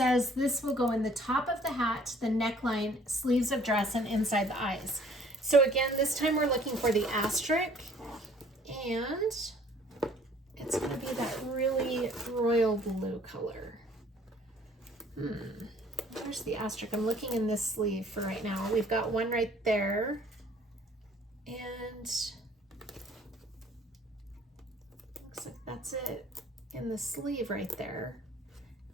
this will go in the top of the hat, the neckline, sleeves of dress, and inside the eyes. So again, this time we're looking for the asterisk, and it's going to be that really royal blue color. Where's the asterisk? I'm looking in this sleeve for right now. We've got one right there, and looks like that's it in the sleeve right there.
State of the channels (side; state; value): both; normal; correlation 0.57